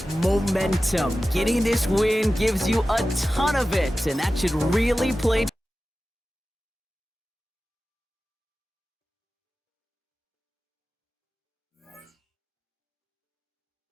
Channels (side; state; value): both; normal; correlation 0.95